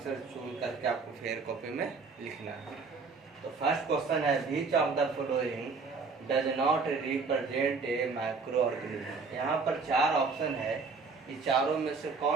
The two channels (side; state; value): left; quieter; 4.6 dB